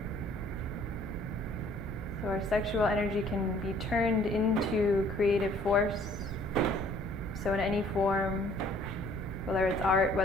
So our sexual energy can be turned into creative force. So in any form, whether it's art,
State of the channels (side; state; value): both; normal; correlation 0.58